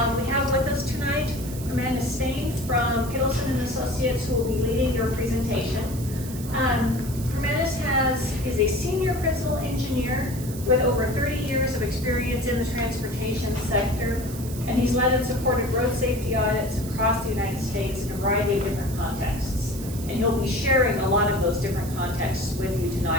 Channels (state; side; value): noise; right; hiss, 14 dB below the sound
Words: We have with us tonight Hermanus Steyn from Kittleson & Associates, who will be leading your presentation. Hermanus is a senior principal engineer with over 30 years of experience in the transportation sector, and he's led and supported road safety audits across the United States in a variety of different contexts. And he'll be sharing a lot of those different contexts with you